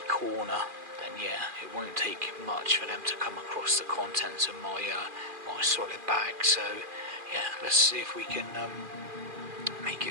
corner, then yeah, it won't take much for them to come across the contents of my my solid bag. So yeah, let's see if we can make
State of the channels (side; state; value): left; late; 2.4 ms